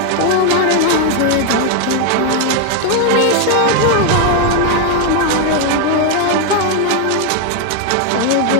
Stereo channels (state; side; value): different; both; correlation 0.01